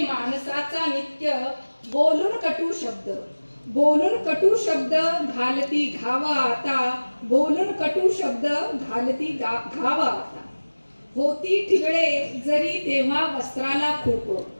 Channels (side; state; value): both; inverted; correlation -1.00